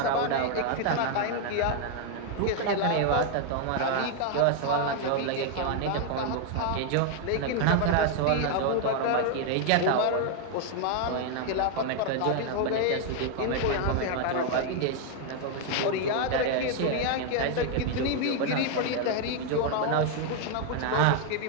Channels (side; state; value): both; different; correlation 0.00